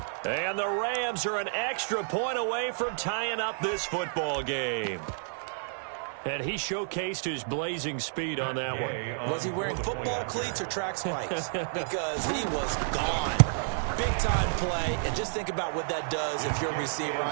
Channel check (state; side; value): silent; left; digital silence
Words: And the Rams are an extra point away from tying up this football game. And he showcased his blazing speed on that one. Was he wearing football cleats or track spikes? Because he was gone. Big-time play, and just think about what that does if you're a receiver